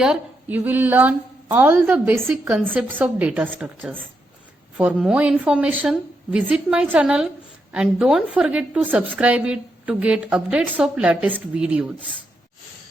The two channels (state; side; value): normal; both; correlation 0.82